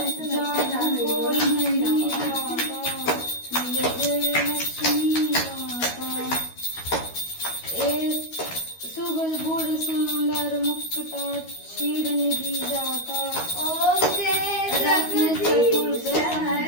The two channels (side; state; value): right; late; 12 ms